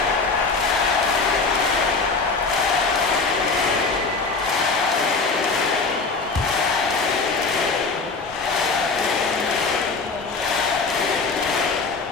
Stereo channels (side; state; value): right; quieter; 4.2 dB